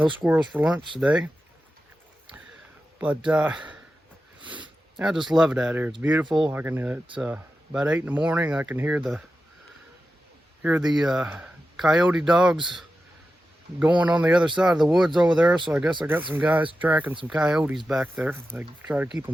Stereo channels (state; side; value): normal; both; correlation 0.92